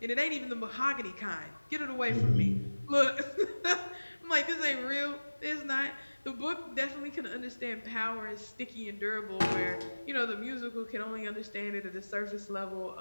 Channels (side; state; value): both; inverted; correlation -1.00